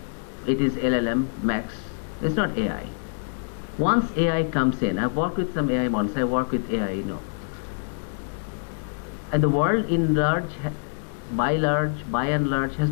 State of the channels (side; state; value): right; silent; digital silence